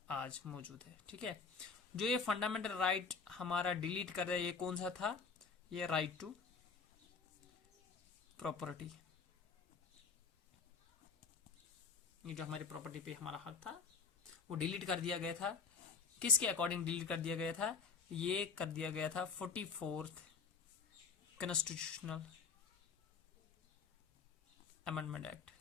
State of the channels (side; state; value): right; quieter; 5.1 dB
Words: आज मौजूद है। ठीक है, जो ये फंडामेंटल राइट हमारा डिलीट कर दिया, ये कौन सा था? ये राइट टू प्रॉपर्टी। ये जो हमारी प्रॉपर्टी पे हमारा हक था वो डिलीट कर दिया गया था। किसके अकॉर्डिंग डिलीट कर दिया गया था? ये कर दिया गया था 44th कॉन्स्टिट्यूशनल अमेंडमेंट एक्ट।